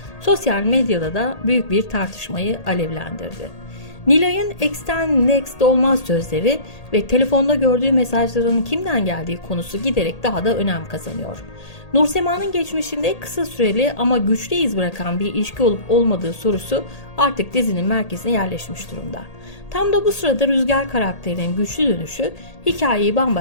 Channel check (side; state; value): right; late; 1.8 ms